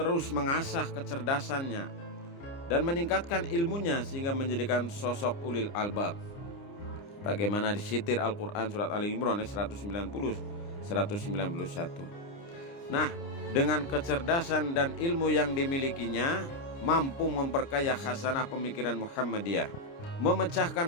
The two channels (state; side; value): late; right; 29 ms